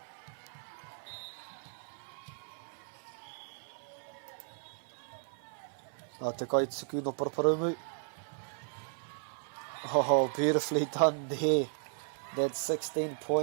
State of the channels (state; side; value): silent; left; 54 dB below the other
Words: Te kaituku no Paraparumu. Oh, beautifully done there. That's 16